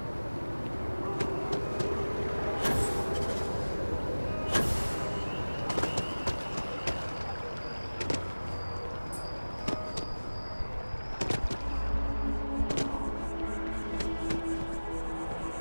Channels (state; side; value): inverted; both; correlation -1.00